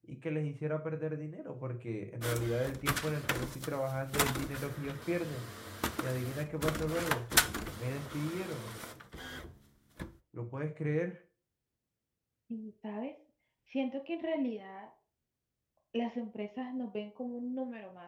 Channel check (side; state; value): both; identical; correlation 1.00